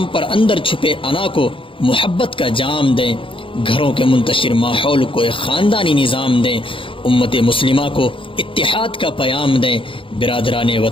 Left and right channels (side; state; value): right; late; 0.25 ms